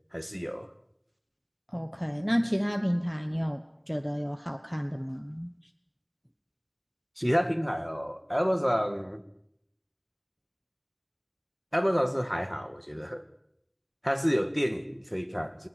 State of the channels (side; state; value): both; identical; correlation 1.00